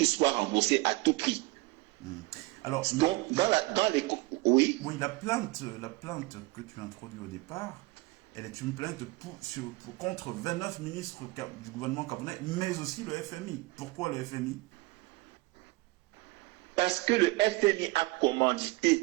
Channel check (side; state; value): left; quieter; 22.0 dB